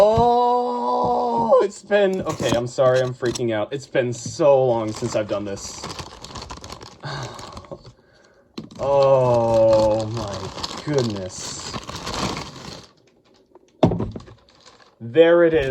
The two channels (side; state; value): both; identical; correlation 1.00